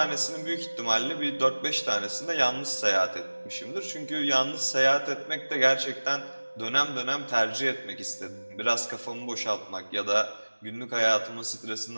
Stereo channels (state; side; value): inverted; both; correlation -1.00